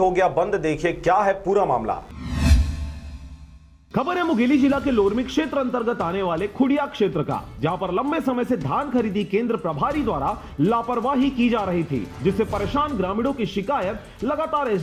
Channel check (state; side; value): identical; both; correlation 1.00